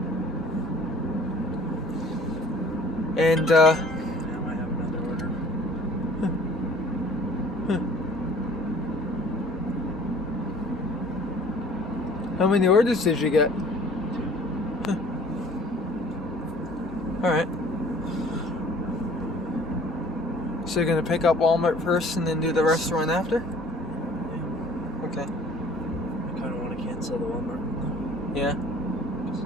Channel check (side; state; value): both; normal; correlation 0.52